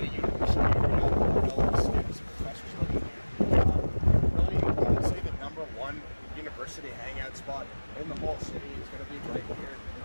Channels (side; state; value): both; inverted; correlation -1.00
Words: university area, all the students and professors living here. Really, I would say the #1 university hangout spot in the whole city is going to be right here,